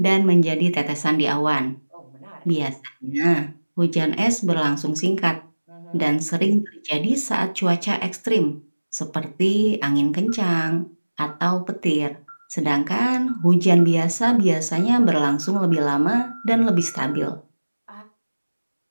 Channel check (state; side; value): inverted; both; correlation -1.00